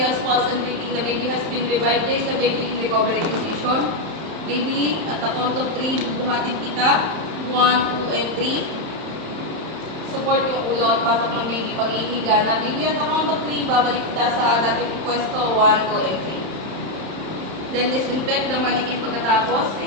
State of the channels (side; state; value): left; late; 31 ms